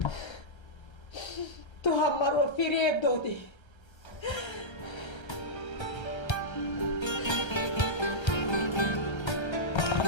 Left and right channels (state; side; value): late; right; 1.3 ms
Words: تو هم مرا فریب دادی.